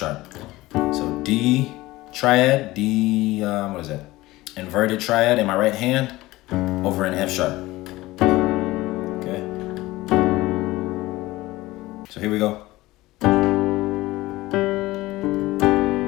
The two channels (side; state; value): right; quieter; 18.8 dB